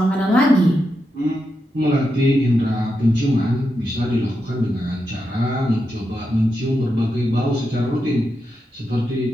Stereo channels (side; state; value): both; normal; correlation 0.86